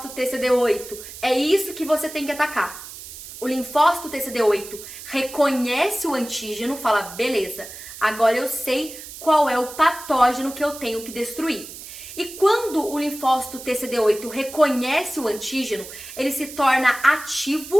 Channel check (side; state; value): right; noise; hiss, 13 dB below the sound